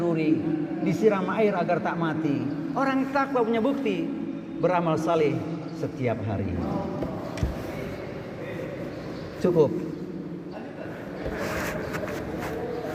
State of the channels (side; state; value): both; identical; correlation 1.00